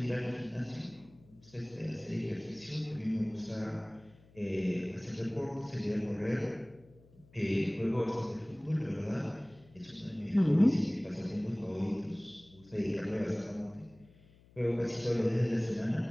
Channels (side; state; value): left; noise; hum, 26 dB below the sound